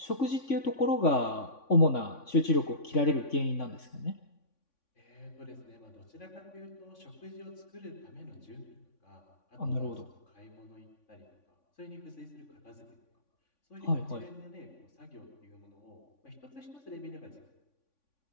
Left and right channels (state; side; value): late; right; 3.5 ms